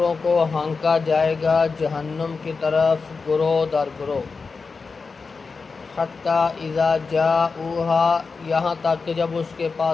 کو ہانکا جائے گا جہنم کی طرف گروہ در گروہ، حتیٰ اذا جاؤہا، یہاں تک کہ جب اس کے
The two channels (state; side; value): quieter; right; 4.6 dB